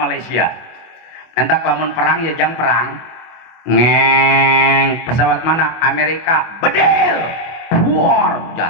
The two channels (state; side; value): late; right; 25 ms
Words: Entah lamun perang ya jang perang. Ngeng, pesawat mana? Amerika, bedel, war